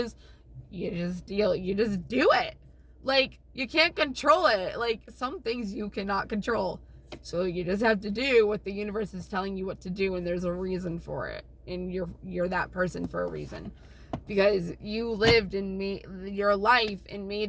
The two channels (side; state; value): both; identical; correlation 1.00